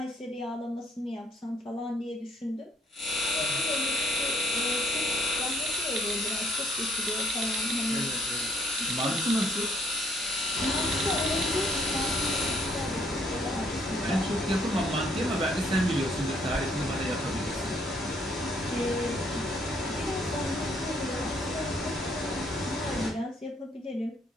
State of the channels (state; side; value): normal; both; correlation 0.67